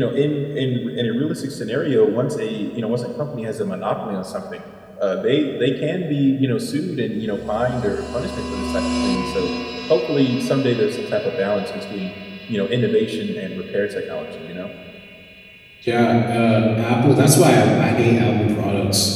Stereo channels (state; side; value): identical; both; correlation 1.00